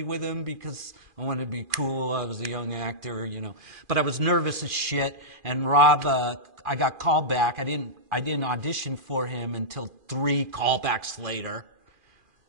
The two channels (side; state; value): left; late; 2.4 ms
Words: with him because I wanted to be cool. I was a young actor, But I was nervous as shit. And Rob, I got called back. I didn't audition for him until 3 callbacks later.